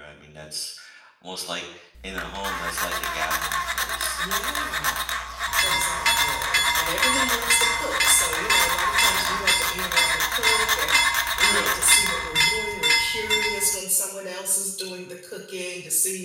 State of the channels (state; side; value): identical; both; correlation 1.00